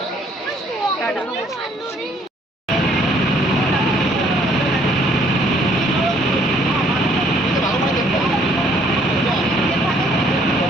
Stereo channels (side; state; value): both; normal; correlation 0.63